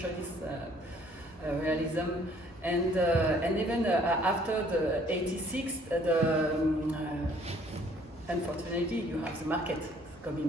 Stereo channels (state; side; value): normal; both; correlation 0.60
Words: realism, and even after the 86, unfortunately you have the market